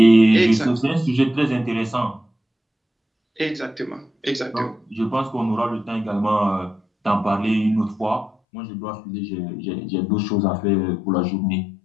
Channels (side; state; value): right; drops out; at 8.3 s